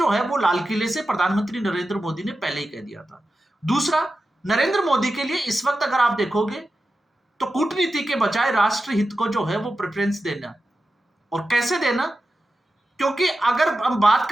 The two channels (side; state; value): both; normal; correlation 0.92